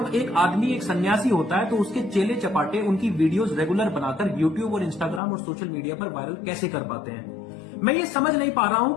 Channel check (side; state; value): right; drops out; at 5.2 s